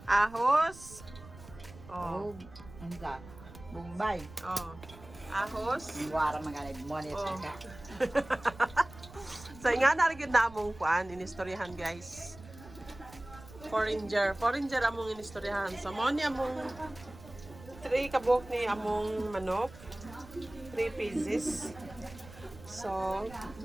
Ahos. Oh. Oh. Anda. Bombay. Oh. Ahos. Wara mga money Oh. ka. So, nga narigid na among kuan, inistoryahan, guys. Foreigner among inistoryahan. So, mo ni among 3 kabok ni among manok. 3 pieces. So,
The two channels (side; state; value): right; noise; rumble, 18 dB below the sound